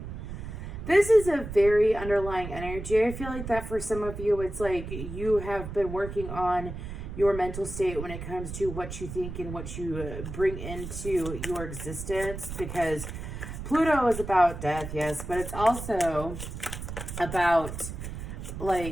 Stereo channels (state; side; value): noise; right; rumble, 8 dB below the sound